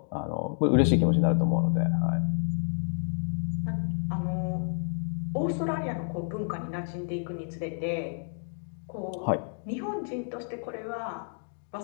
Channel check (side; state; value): right; silent; digital silence